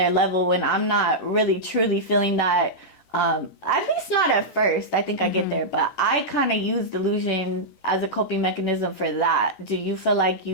level when I'm not really truly feeling that. At least not at first. I think I get there, but I kind of use delusion as a coping mechanism for that. Do you feel like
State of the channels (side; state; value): right; late; 14 ms